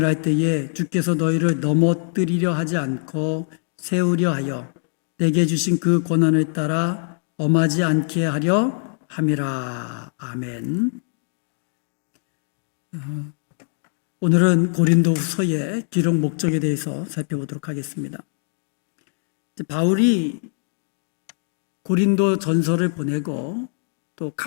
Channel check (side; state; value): right; silent; digital silence